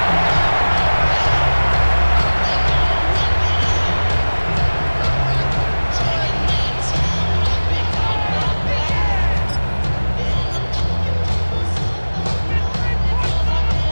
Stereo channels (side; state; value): both; inverted; correlation -1.00